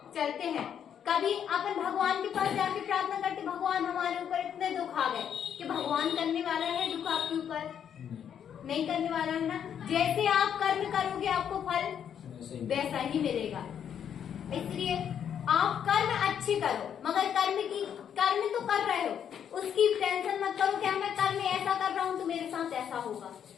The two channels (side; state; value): right; quieter; 8.7 dB